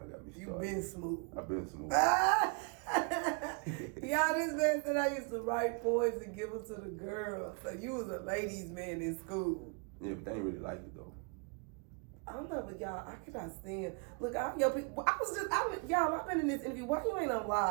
of got me started. You been smooth. I've been smooth. Y'all, this man said I used to write poems and give them to the girls. So you was a ladies' man in school. Yeah, but they ain't really like it though. I don't know, but y'all, I cannot stand. Look, all your people. Y'all, I've been in this interview. Why you ain't on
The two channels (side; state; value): left; quieter; 33.2 dB